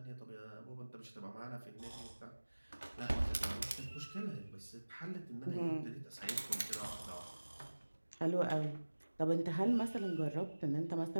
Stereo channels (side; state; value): both; inverted; correlation -1.00